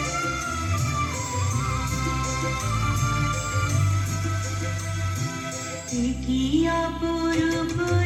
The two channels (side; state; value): both; identical; correlation 1.00